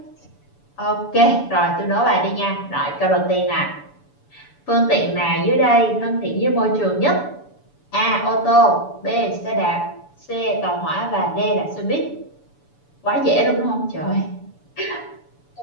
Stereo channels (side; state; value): right; late; 6.9 ms